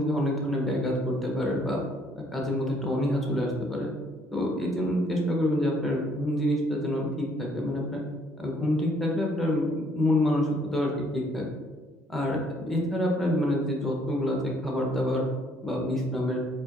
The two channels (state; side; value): normal; both; correlation 0.65